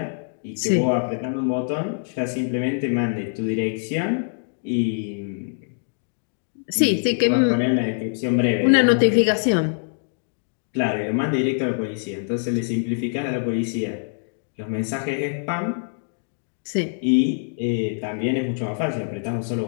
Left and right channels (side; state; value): right; silent; digital silence